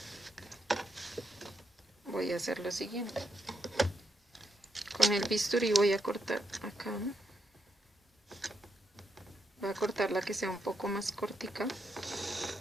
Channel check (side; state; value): both; normal; correlation 0.81